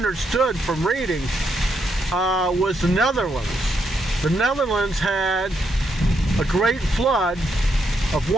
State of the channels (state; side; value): normal; both; correlation 0.78